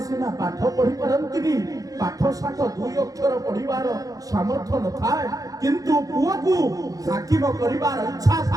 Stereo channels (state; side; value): late; left; 0.17 ms